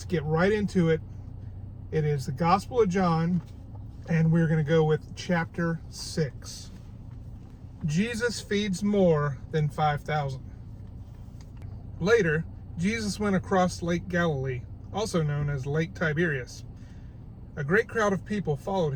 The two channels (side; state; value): both; identical; correlation 1.00